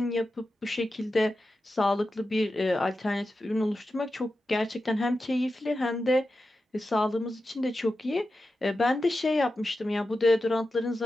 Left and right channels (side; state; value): both; normal; correlation 0.91